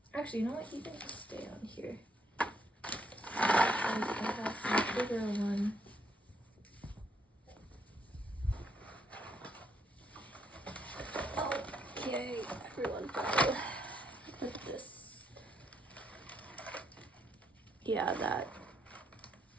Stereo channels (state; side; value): normal; both; correlation 0.74